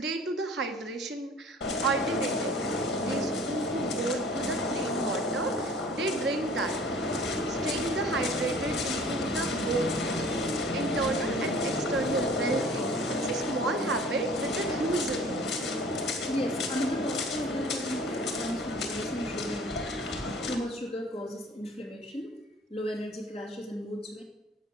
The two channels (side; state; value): both; normal; correlation 0.48